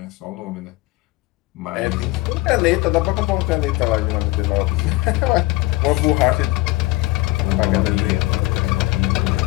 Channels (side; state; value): right; quieter; 20.1 dB